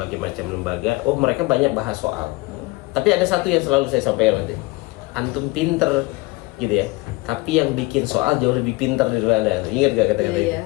macam lembaga, mereka banyak bahas soal. Tapi ada satu yang selalu saya sampaikan nanti, antum pinter gitu ya, tapi yang bikin soal jauh lebih pinter daripada Anda. Ingat gak kata-kata itu?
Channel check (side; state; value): right; quieter; 22.8 dB